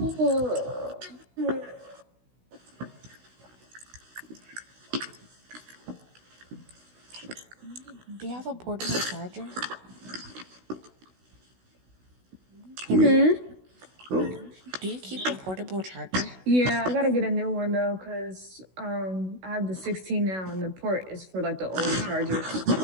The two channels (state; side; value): late; left; 16 ms